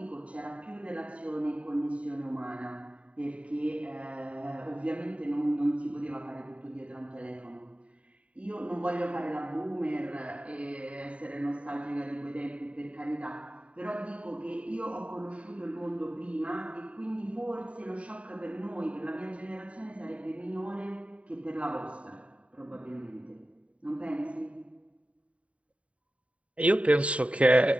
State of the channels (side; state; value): left; late; 0.065 ms